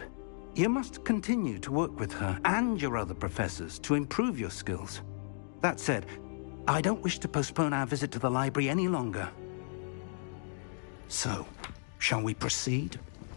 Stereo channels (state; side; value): silent; right; digital silence